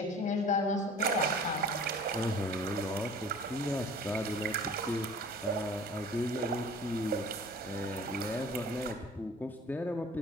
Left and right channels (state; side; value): normal; both; correlation 0.45